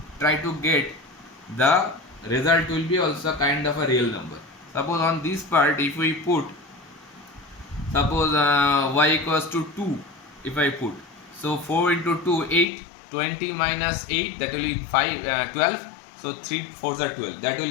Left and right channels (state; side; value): drops out; right; at 12.7 s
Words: try to get the result will be also kind of a real number. Suppose on this part, if we put, suppose y equals to 2, if I put, so 4 into 2, 8, 20 minus 8, that will be 12. So 3 4s are 12. That